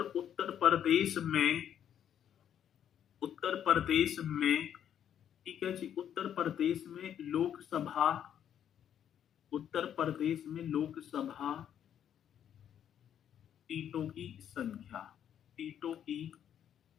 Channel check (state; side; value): quieter; right; 9.6 dB